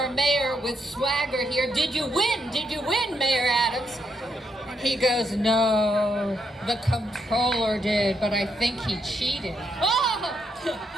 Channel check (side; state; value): both; normal; correlation 0.78